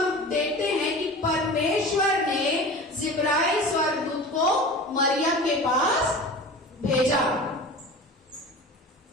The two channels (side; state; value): both; normal; correlation 0.35